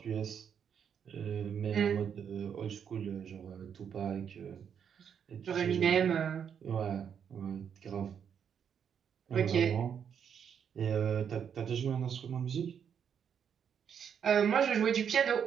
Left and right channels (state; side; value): quieter; left; 7.8 dB